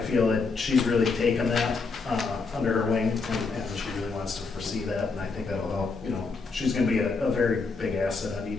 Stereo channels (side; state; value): right; quieter; 4.3 dB